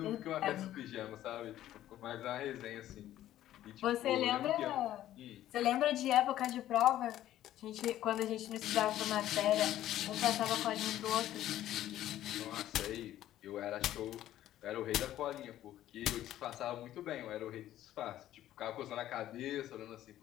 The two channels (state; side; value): quieter; right; 13.0 dB